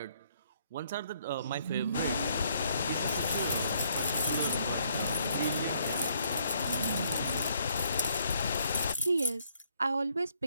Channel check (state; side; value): inverted; both; correlation -0.68